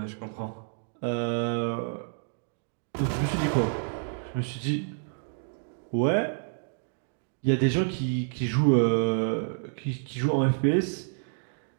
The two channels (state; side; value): silent; left; digital silence